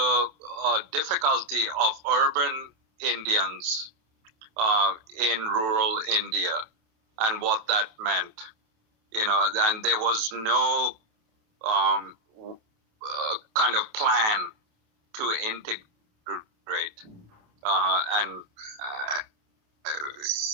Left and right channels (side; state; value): left; late; 28 ms